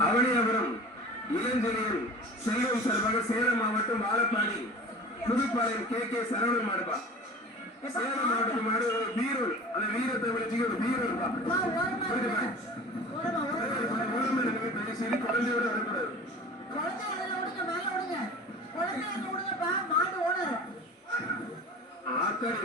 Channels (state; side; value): normal; both; correlation 0.39